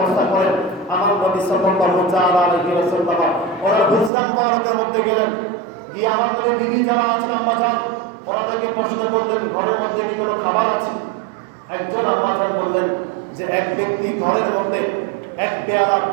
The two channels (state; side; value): drops out; left; at 4.1 s